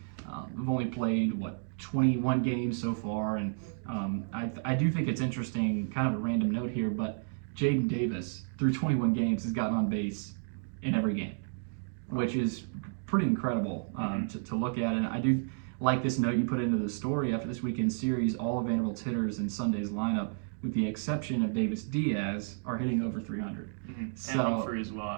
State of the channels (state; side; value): silent; left; digital silence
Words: We've only played, 21 games so far, and I do think it's interesting, kind of a random note here, but Jaden Davis, through 21 games, has gotten on base in every game, which is pretty incredible to look at. And I do like this note you put into the story. After this weekend's series, all of Vanderbilt's hitters in Sunday's lineup, with the exception of Davis Diaz, are hitting over 300. So, and Humphrey as